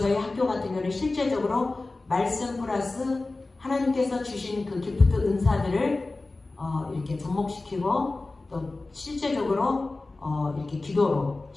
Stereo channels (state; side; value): quieter; right; 3.3 dB